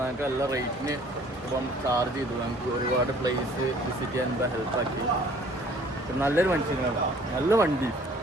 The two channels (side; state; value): both; normal; correlation 0.55